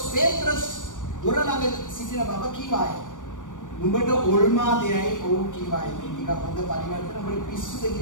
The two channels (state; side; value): late; right; 0.87 ms